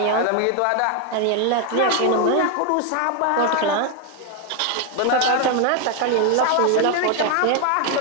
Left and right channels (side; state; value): both; different; correlation 0.01